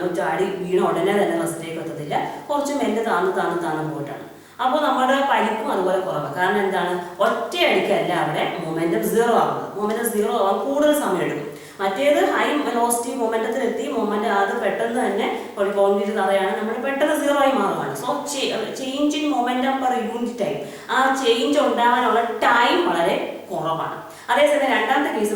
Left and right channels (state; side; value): identical; both; correlation 1.00